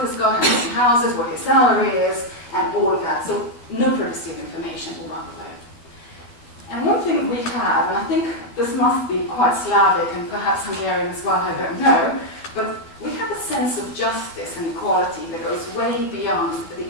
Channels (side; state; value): right; late; 12 ms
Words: has got, how many houses, what his salary is, and all of that. So no privacy of information all around the world. And one thing we have, and I think this must be quite Slavic and perhaps Hungarian as well, I don't know, but we have a sense of justice and equality that goes way beyond the